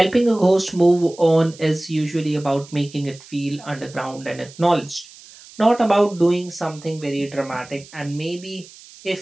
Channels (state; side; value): noise; right; hiss, 21 dB below the sound